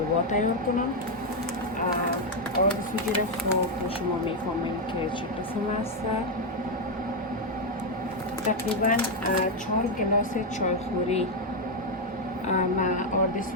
تیار کنم. آرد سوجی را خوب شما میفهمیم که چه قسم است. تقریبا 4 گلاس چایخوری من آرد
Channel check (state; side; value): normal; both; correlation 0.02